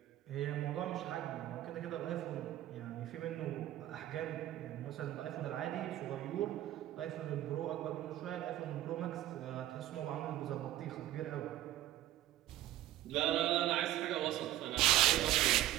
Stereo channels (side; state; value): left; quieter; 14.1 dB